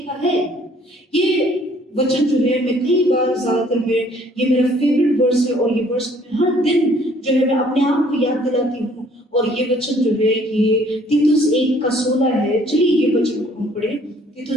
का है? ये वचन जो है मैं कई बार, ज्यादातर में ये मेरा फेवरेट वर्स है और ये वर्स मैं हर दिन जो है मैं अपने आप को याद दिलाती हूँ। और ये वचन जो है ये तीतुस 1:16 है। चलिए ये वचन को हम पढ़े,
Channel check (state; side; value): normal; both; correlation 0.60